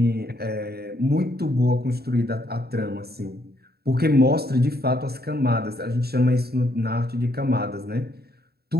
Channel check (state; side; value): late; left; 0.46 ms